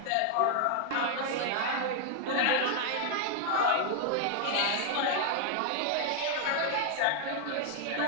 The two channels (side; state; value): both; different; correlation 0.00